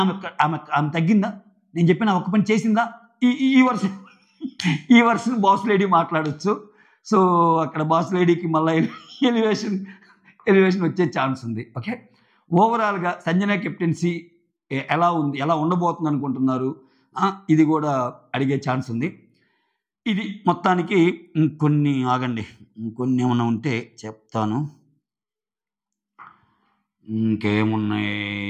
ఆమె తగ్గిందా? నేను చెప్పిన ఒక్క పని చేసిందా? ఈ వర్షన్ బాస్ లేడీ మాట్లాడచ్చు. సో అక్కడ బాస్ లేడీకి మళ్ళీ ఎలివేషన్ వచ్చే ఛాన్స్ ఉంది. ఓకే, ఓవరాల్గా సంజన కెప్టెన్సీ ఎలా ఉంది, ఎలా ఉండబోతుంది అనుకుంటున్నారు, ఇది కూడా అడిగే ఛాన్స్ ఉంది. ఇది మొత్తానికి ఇంకొన్ని ఆగండి, ఇంకొన్ని ఏమన్నా ఉంటే చెప్తాను. ఇంకేమున్నాయి,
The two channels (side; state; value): both; identical; correlation 1.00